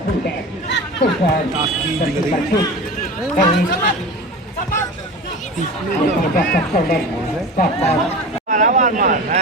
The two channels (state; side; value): normal; both; correlation 0.32